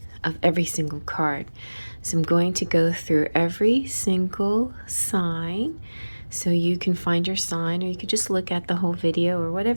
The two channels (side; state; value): both; inverted; correlation -1.00